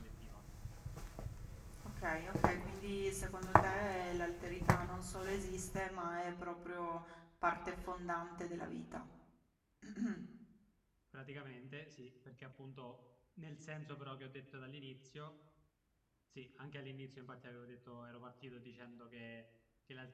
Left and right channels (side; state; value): both; identical; correlation 1.00